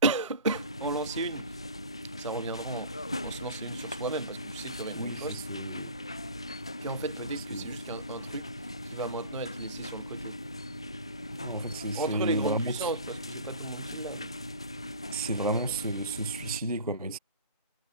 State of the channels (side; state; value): both; inverted; correlation -0.40